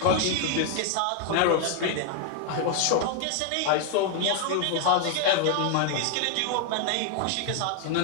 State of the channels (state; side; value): different; both; correlation 0.00